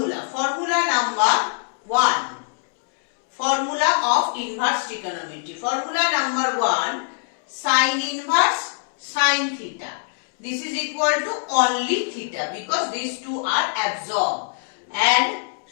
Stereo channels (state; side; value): silent; right; 64 dB below the other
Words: Formula number 1. Formula of inverse trigonometry. Formula number 1. Sin inverse sin theta. This is equal to only theta because these two are absorbed. And